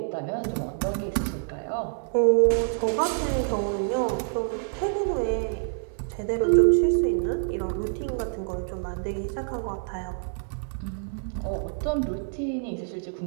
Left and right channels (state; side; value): silent; left; digital silence